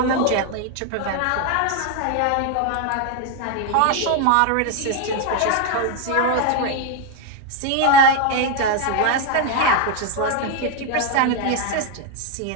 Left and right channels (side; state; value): both; different; correlation 0.01